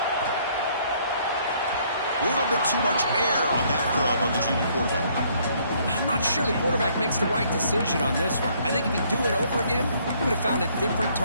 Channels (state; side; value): inverted; both; correlation -0.65